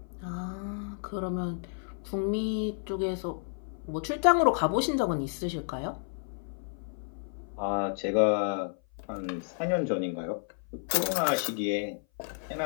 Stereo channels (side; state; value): right; silent; 56 dB below the other